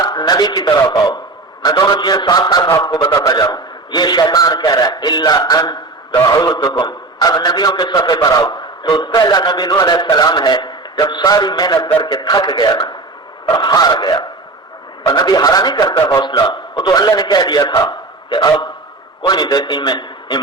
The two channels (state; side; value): quieter; left; 3.3 dB